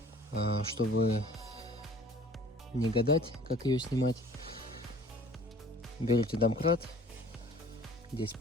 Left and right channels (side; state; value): both; normal; correlation 0.49